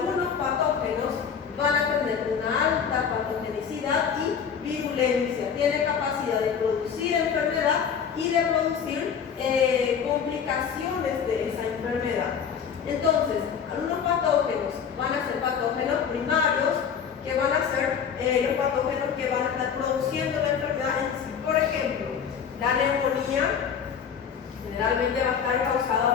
patógenos van a tener una alta patogenicidad y virulencia, tienen capacidad de producir enfermedad y de producir complicaciones de esa enfermedad. Entonces, algunos patógenos van a ser patógenos primarios, que van a ser los patógenos que van a estar produciendo la enfermedad en sí. Por ejemplo, la neumonía generalmente va a estar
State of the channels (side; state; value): right; quieter; 7.2 dB